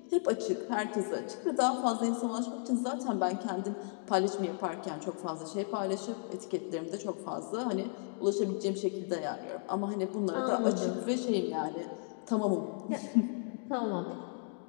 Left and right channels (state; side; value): silent; right; 55 dB below the other